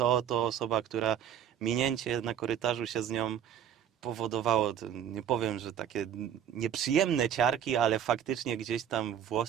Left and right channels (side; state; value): left; quieter; 9.3 dB